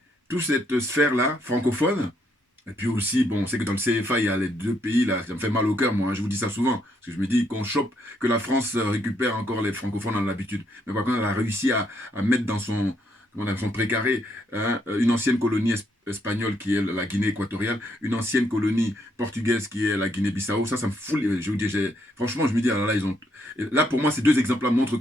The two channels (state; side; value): normal; both; correlation 0.74